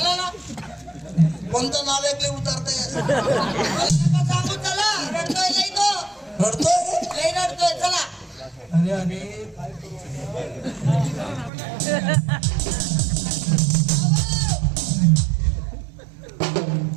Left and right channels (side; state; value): left; drops out; at 11.5 s